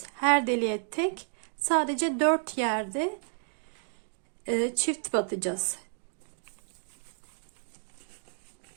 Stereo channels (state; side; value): silent; left; digital silence